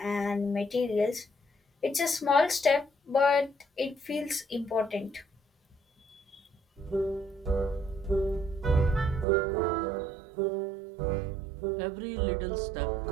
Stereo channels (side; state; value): left; drops out; at 9.2 s